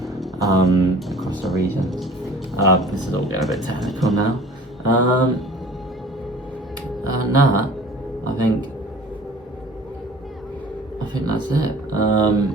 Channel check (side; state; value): both; normal; correlation 0.46